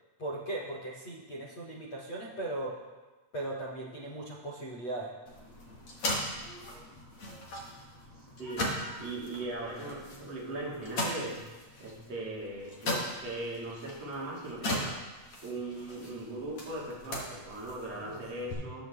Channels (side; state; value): right; late; 8.7 ms